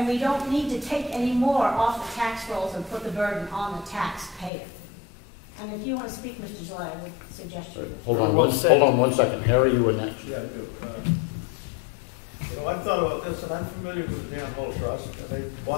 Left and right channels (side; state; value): right; drops out; at 4.5 s